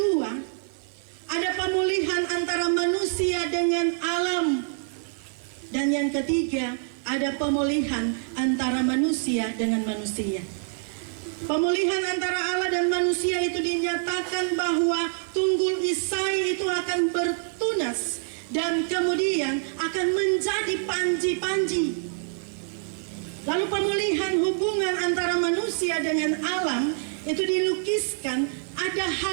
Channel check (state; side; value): silent; left; digital silence